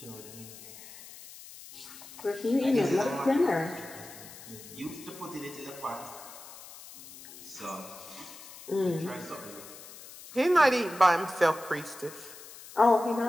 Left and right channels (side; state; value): left; noise; hiss, 16 dB below the sound